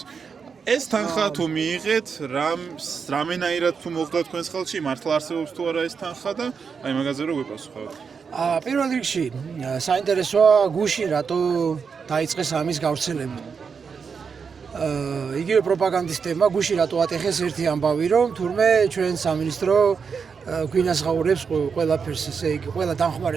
ეს თანხა თუ მიიღეთ, რამენაირად თუ მოხდა თქვენს ხელში, მართლა არსებობს თუ არა ეს თანხა და აი მაგაზე რო გვიპასუხოთ. პირველ რიგში საინტერესოა გუშინ რატო დაიწყეს ამის გავრცელება. იგივე პროპაგანდისტებმა გუშინ რატო ატეხეს ერთი ამბავი, რომ თურმე ჩვენ სამინისტრო გვინასღაურებს ყველაფერს, ესე იგი, ყველა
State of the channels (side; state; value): left; quieter; 5.9 dB